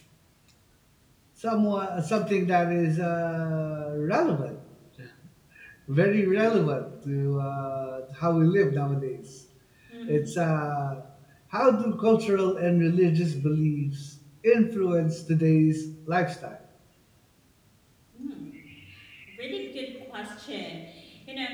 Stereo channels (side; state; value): both; identical; correlation 1.00